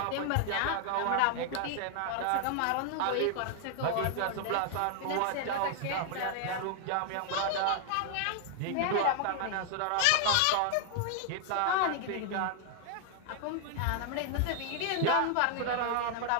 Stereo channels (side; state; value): both; different; correlation 0.00